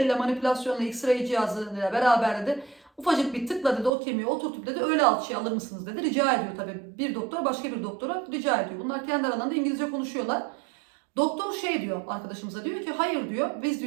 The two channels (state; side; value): drops out; left; at 3.9 s